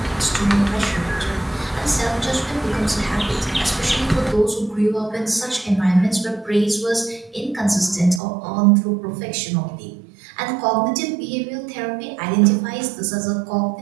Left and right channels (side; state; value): left; drops out; at 8.2 s